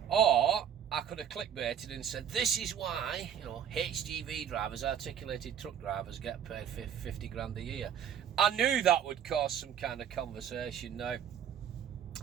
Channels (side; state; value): left; quieter; 8.9 dB